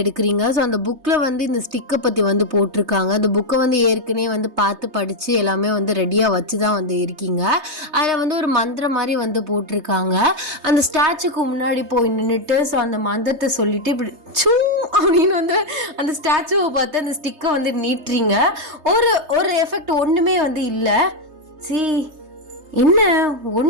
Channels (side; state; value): left; late; 3.3 ms